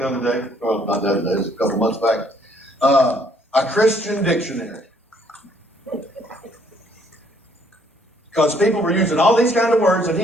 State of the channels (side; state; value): both; normal; correlation 0.65